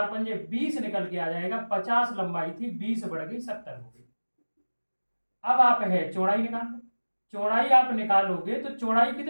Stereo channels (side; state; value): both; inverted; correlation -1.00